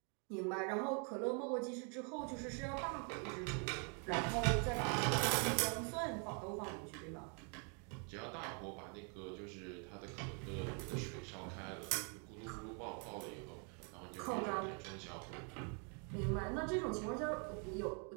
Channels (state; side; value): quieter; left; 38.6 dB